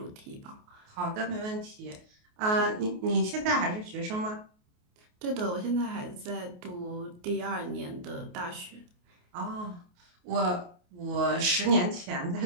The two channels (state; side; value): late; left; 28 ms